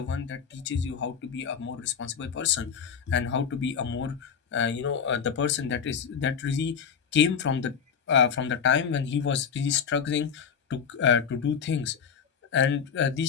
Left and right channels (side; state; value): right; quieter; 6.9 dB